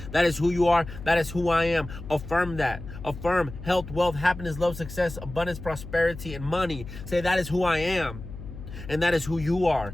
That is who you are. That is who I am. Affirm that. Affirm health, wealth, happiness, love, success, abundance, prosperity, and money. Say, that is who I am. And that is who you are.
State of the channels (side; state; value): left; noise; hum, 12 dB below the sound